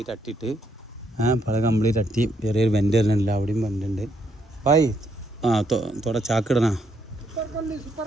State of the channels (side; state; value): both; normal; correlation 0.74